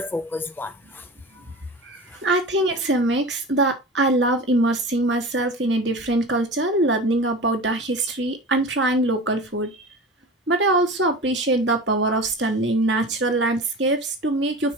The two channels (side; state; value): both; normal; correlation 0.33